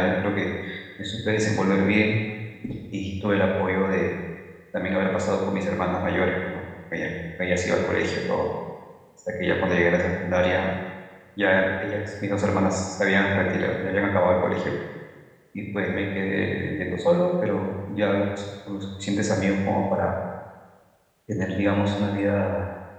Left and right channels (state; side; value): identical; both; correlation 1.00